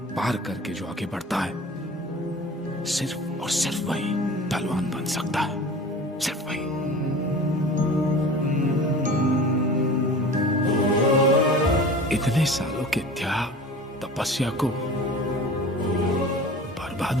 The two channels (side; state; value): both; normal; correlation 0.38